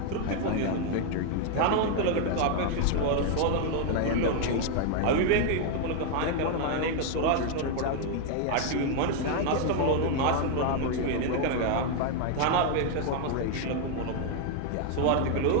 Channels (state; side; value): different; both; correlation 0.01